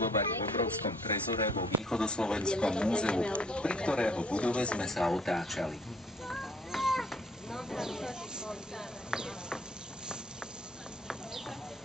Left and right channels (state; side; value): normal; both; correlation 0.60